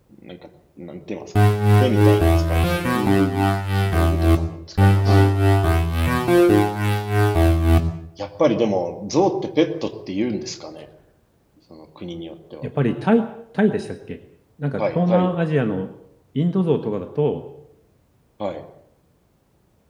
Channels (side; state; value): both; identical; correlation 1.00